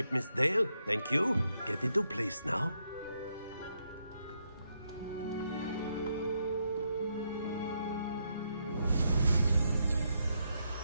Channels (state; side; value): inverted; both; correlation -0.79